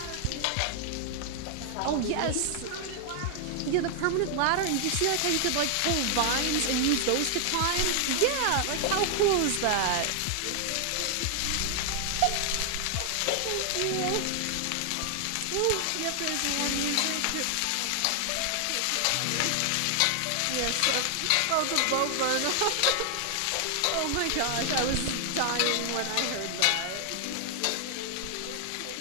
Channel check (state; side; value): different; both; correlation 0.00